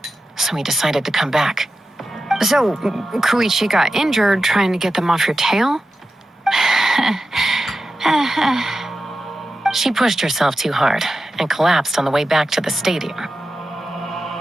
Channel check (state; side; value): normal; both; correlation 0.92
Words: So we decided to come back. So, Koichi got injured trying to get them off your tail? She pushed herself too hard and collapsed on the way back to the stadium.